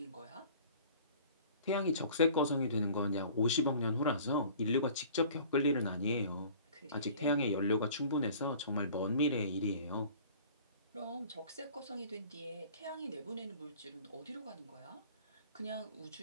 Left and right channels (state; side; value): inverted; both; correlation -0.48